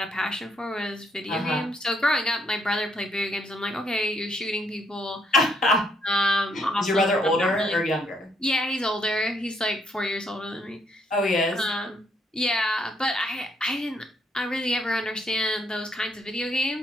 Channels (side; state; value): both; normal; correlation 0.72